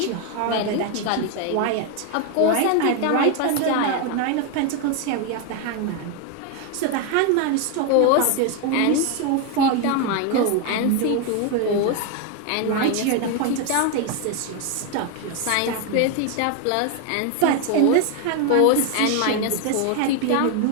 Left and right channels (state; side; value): different; both; correlation 0.01